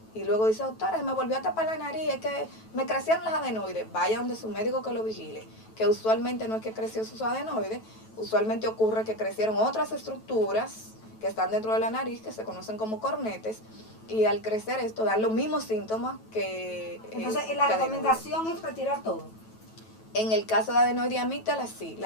y luego dice, doctora, me volvió a tapar la nariz, es que me crecieron las adenoides. Vaya donde su médico que lo vigile, que usualmente no es que creció sus adenoides, usualmente ocurre que crecieron otras estructuras que están dentro de la nariz, que se conocen como cornetes, y al crecer esto dan los mismos síntomas que... Entonces, la recomendación es retirar todo. En el caso de adenoide y amígdala, sí.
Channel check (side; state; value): right; late; 9.2 ms